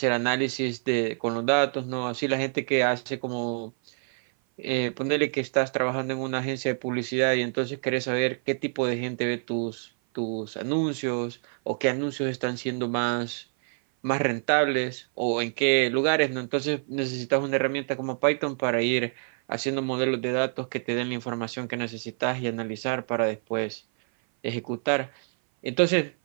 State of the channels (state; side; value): silent; left; 56 dB below the other